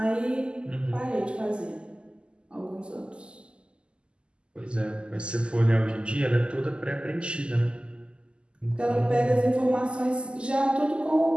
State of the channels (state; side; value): late; left; 0.051 ms